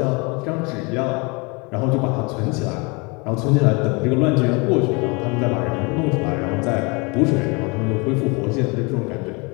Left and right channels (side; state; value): right; quieter; 29.2 dB